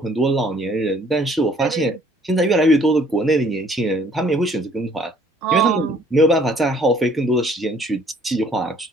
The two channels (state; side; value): normal; both; correlation 0.59